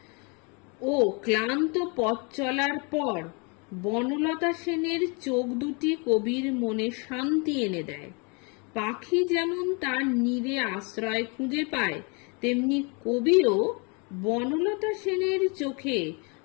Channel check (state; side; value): quieter; right; 32.5 dB